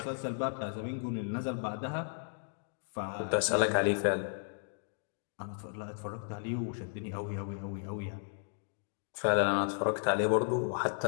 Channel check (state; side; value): silent; right; digital silence